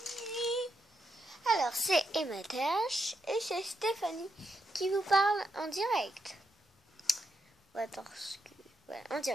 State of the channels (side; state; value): both; normal; correlation 0.82